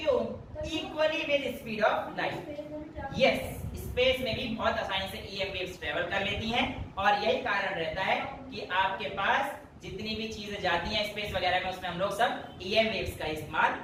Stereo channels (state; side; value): identical; both; correlation 1.00